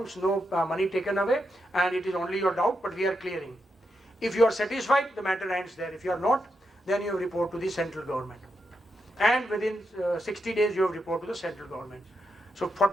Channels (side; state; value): both; normal; correlation 0.84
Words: no money taken away, and it is only your doubt, but we are clearing. If you are satisfied, the matter ends there. If you are not, then you report to the central government. And within 60 days, you have report to the central government. So